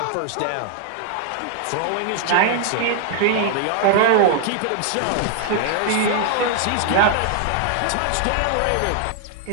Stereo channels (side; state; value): both; different; correlation 0.00